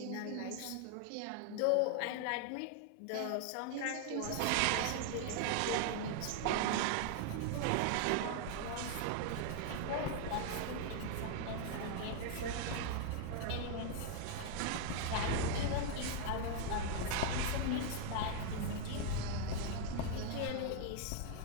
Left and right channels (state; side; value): different; both; correlation 0.00